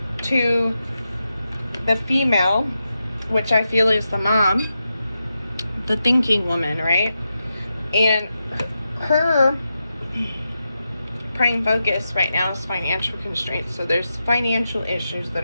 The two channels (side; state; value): both; inverted; correlation -0.88